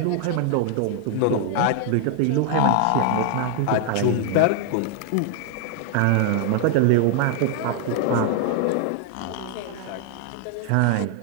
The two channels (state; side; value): different; both; correlation 0.00